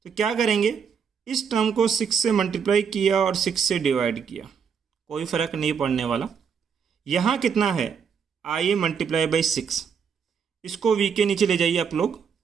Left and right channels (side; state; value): left; quieter; 6.7 dB